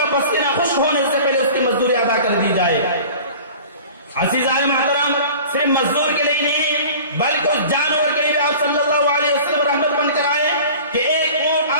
پسینہ خشک ہونے سے پہلے اس کی مزدوری ادا کر دی جائے۔ عزیزان محترم، صرف مزدور کے لیے نہیں بلکہ اس جانور کے لیے آپ صلی اللہ علیہ وسلم رحمت بن کر آئے کہ ایک اونٹ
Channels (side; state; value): both; inverted; correlation -0.42